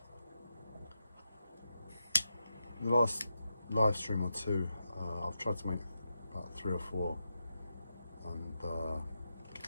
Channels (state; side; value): inverted; both; correlation -0.87